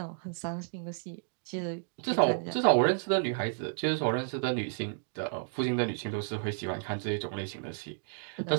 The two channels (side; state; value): left; silent; digital silence